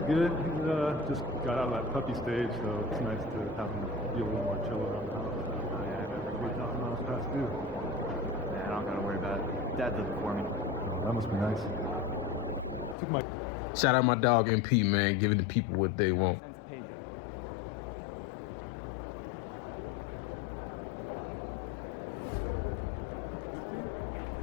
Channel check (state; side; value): drops out; right; at 13.0 s